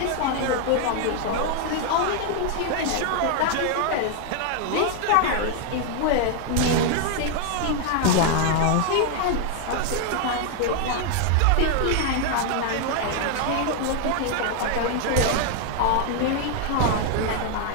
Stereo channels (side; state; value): both; different; correlation 0.00